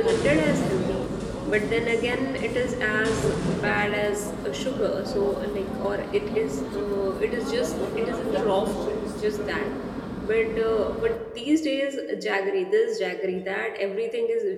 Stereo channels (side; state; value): both; identical; correlation 1.00